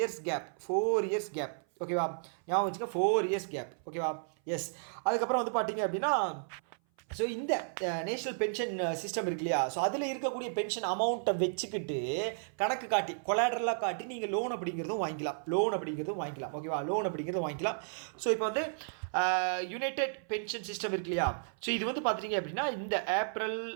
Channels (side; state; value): left; silent; 56 dB below the other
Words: gap. ஓகேவா? ஞாபகம் வச்சுக்க, 4 years கேப். ஓகேவா? எஸ், அதுக்கப்புறம் வந்து பார்த்தீங்க அப்படின்னா ஸோ இந்த நேஷ்னல் பென்ஷன் சிஸ்டம் இருக்கு இல்லையா, ஸோ அதில் இருக்கக்கூடிய பென்ஷன் அமௌண்ட்டை வச்சுக்கிட்டு கணக்கு காட்டி கொலாட்ரலாக காட்டி நீங்கள் லோன் அப்படிங்கிறதும் வாங்கிக்கலாம். ஓகேவா? லோன் அப்படிங்கிறதும் வாங்கிக்கலாம். ஸோ இப்போ வந்து யுனைடெட் பென்ஷன் சிஸ்டம் இருக்கு இல்லையா, ஸோ இது வந்து பார்த்துட்டிங்க அப்படின்னா இந்த ஏப்ரல்